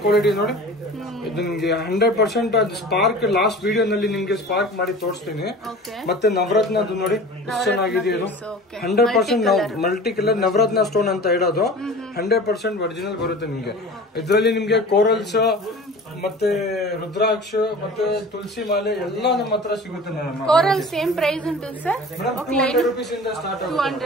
ಕ್ವಾಲಿಟಿ ನೋಡಿ. ಇದು ನಿಮ್ಗೆ 100% ಅದು ಸ್ಪಾರ್ಕ್ ಲಾಸ್ಟ್ ವಿಡಿಯೋ ನಲ್ಲಿ ನಿಮ್ಗೆ ಸ್ಪಾರ್ಕ್ ಮಾಡಿ ತೋರಿಸ್ತೀನಿ. ಮತ್ತೆ ನವರತ್ನದ್ದು ನೋಡಿ ಎಷ್ಟು ಚೆನ್ನಾಗಿದೆ ಇದು. 100% ಮಲ್ಟಿ ಕಲರ್ ನವರತ್ನ ಸ್ಟೋನ್ ಅಂತ ಇಡೋದು. 100% ಒರಿಜಿನಲ್ ಬರುತ್ತೆ ನಿಮ್ಗೆ. ಇದರಲ್ಲಿ ನಿಮ್ಗೆ ಕೋರಲ್ಸ್ ಮತ್ತೆ ರುದ್ರಾಕ್ಷ ಮತ್ತೆ ತುಳಸಿ ಮಾಲೆ ಎಲ್ಲ ನಮ್ಮ ಹತ್ರ ಸಿಗುತ್ತೆ ಮೇಡಮ್. కోరల్ సేమ్ ప్రైస్ ఉంటుంది సార్? 200 రూపీస్ ಇಂದ ಸ್ಟಾರ್ಟ್ ಆಗುತ್ತೆ.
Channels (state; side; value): normal; both; correlation 0.39